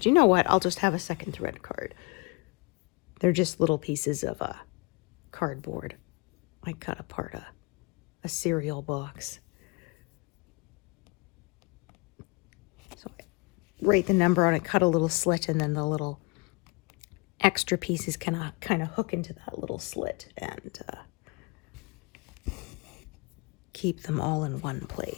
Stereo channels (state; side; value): quieter; right; 28.4 dB